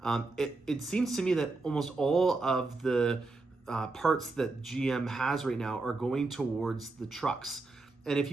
It seems to me that almost all of the parts that GM has right now are going towards the trucks. And if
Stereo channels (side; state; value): left; quieter; 3.5 dB